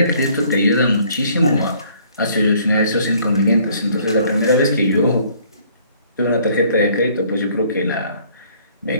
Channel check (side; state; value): both; inverted; correlation -0.60